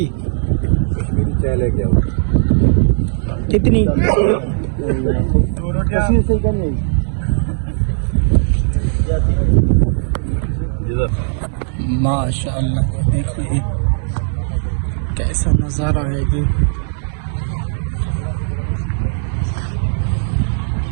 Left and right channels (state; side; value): silent; left; digital silence